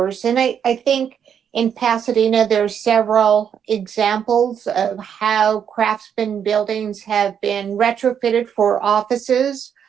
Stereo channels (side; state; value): left; quieter; 8.1 dB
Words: And I think in Pasadena, there's several examples of how craftsman buildings have been retrofitted for offices.